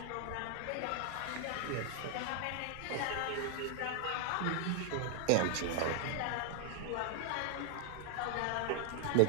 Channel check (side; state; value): both; different; correlation 0.00